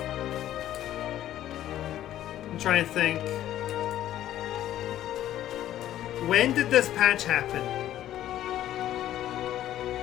I'm trying to think. When did this patch happen?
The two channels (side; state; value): right; quieter; 12.6 dB